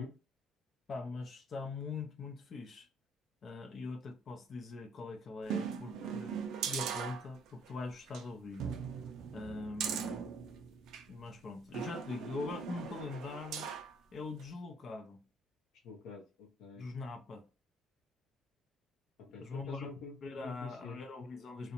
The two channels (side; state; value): both; normal; correlation 0.62